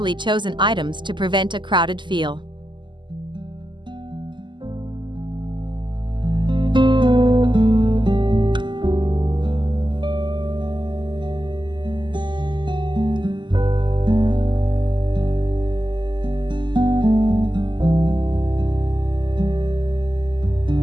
chosen items to prevent a crowded feel.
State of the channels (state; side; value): late; left; 0.22 ms